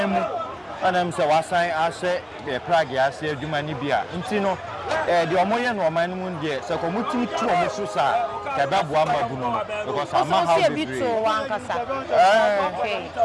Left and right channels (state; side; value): identical; both; correlation 1.00